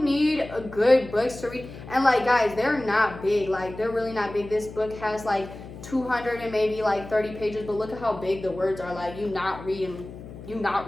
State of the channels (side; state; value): left; noise; hum, 14 dB below the sound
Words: need a good books to read, and like guys, they're not big, like they're really not big. This book has like 200 and maybe like 30 pages, but look at how big the words are. Like you not reading